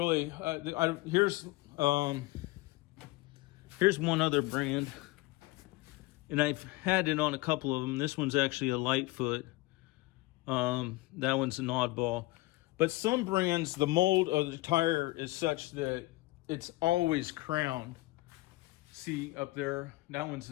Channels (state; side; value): quieter; right; 20.8 dB